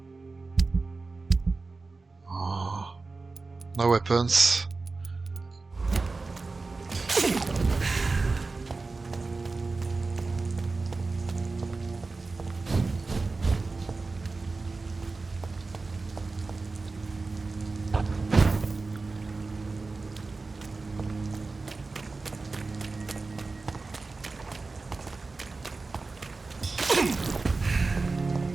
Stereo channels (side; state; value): left; quieter; 3.8 dB